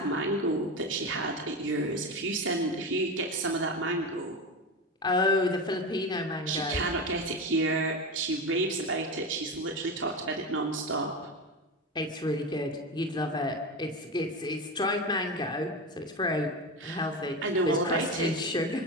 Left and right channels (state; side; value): normal; both; correlation 0.21